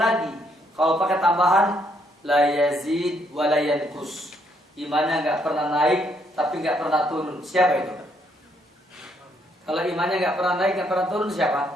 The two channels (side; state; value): both; normal; correlation 0.72